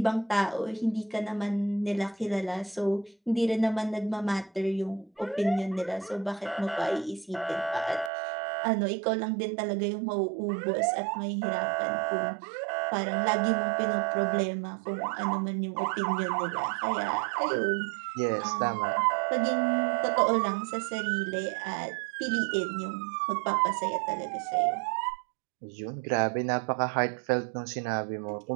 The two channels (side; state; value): left; drops out; at 8.1 s